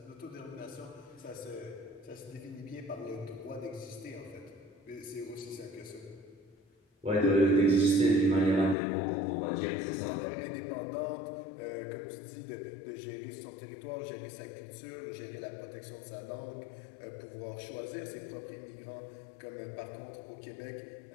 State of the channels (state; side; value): drops out; right; at 8.8 s